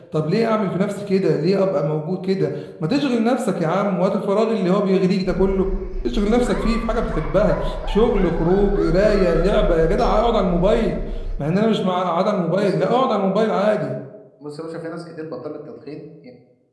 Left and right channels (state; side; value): identical; both; correlation 1.00